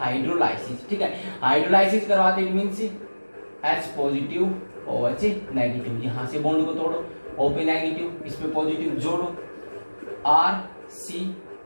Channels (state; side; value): inverted; both; correlation -1.00